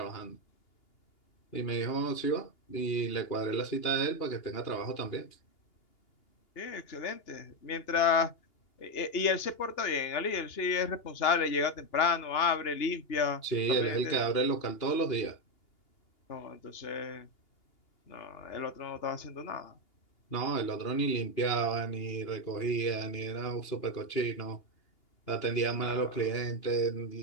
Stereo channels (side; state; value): right; late; 2.8 ms